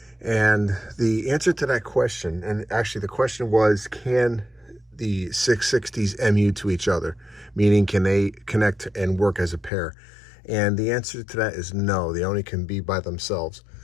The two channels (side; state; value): right; drops out; at 9.7 s